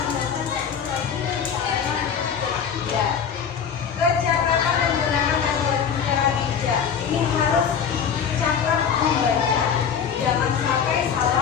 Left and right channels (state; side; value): quieter; right; 7.4 dB